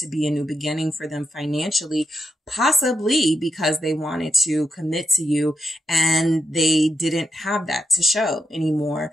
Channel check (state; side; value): normal; both; correlation 0.83